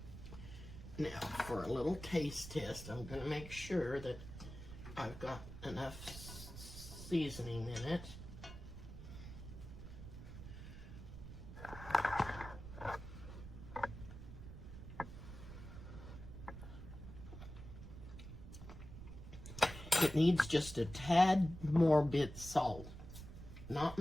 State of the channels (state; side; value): noise; right; rumble, 12 dB below the sound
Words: Now, for a little taste test, I'm going to make sure that I've got enough seasoning in it. It needs just a tad more bit salt, not